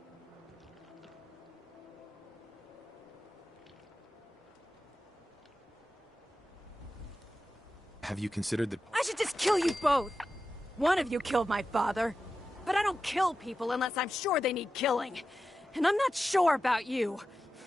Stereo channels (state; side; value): normal; both; correlation 0.92